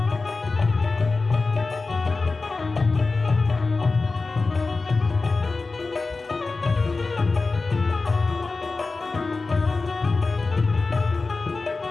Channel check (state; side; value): quieter; right; 3.8 dB